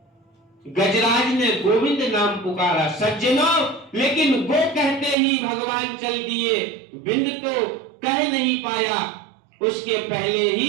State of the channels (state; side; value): drops out; left; at 5.2 s